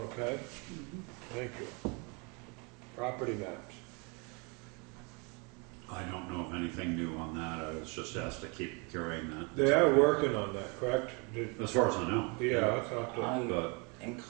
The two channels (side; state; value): left; quieter; 31.7 dB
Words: okay? Thank you. Property maps. I don't know of anything new on that. I was just asked to keep carrying that. They are working on that, correct? As far as I know. Yeah, I thought that. I'm But